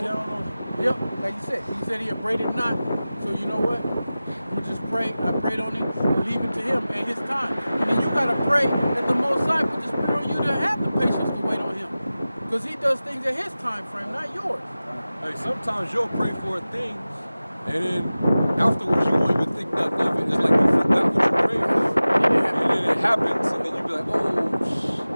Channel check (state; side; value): inverted; both; correlation -0.96